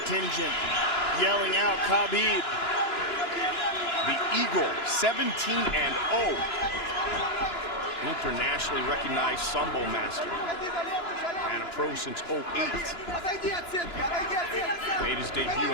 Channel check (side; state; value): right; late; 2.9 ms